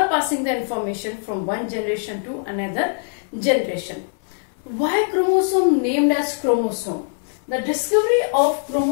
passing the information from one generation to another generation. Why chromosome named as chromosome? The discovery of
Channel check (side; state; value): right; silent; 58 dB below the other